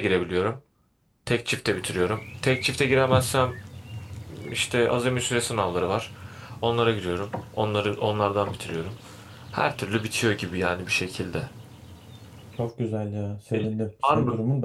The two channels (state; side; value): identical; both; correlation 1.00